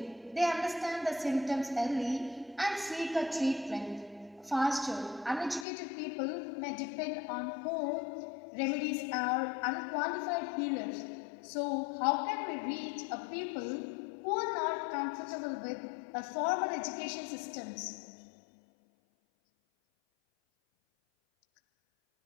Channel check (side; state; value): right; drops out; at 5.7 s